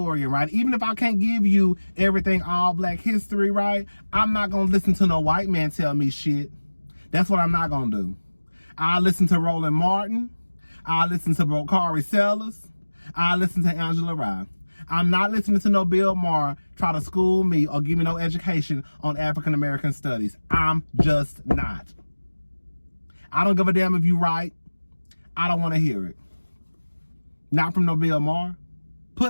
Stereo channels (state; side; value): inverted; both; correlation -1.00